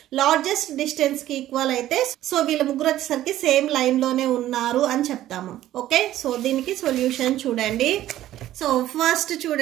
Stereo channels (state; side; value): quieter; left; 13.6 dB